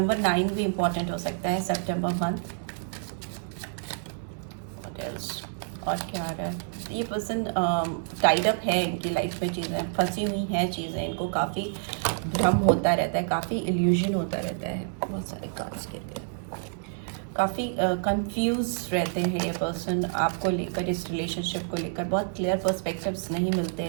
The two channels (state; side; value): silent; left; digital silence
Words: 9 भी इम्पॉर्टेंट हो सकता है, सितंबर मंथ। व्हाट एल्स, और क्या आ रहा है, ये पर्सन टाइड अप है, इनकी लाइफ में चीज़ें फंसी हुई हैं, चीज़ें इनको काफ़ी भ्रम होता रहता है, काफ़ी इल्यूजन होता रहता है, बहुत सारे कार्ड्स के लिए काफ़ी कंफ्यूज रहते हैं ये पर्सन आपको लेकर, इस रिलेशनशिप को लेकर बहुत क्लियर पर्सपेक्टिव्स नहीं मिलते